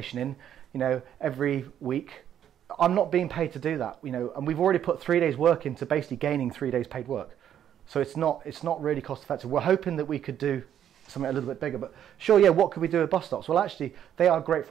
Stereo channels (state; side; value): quieter; left; 10.0 dB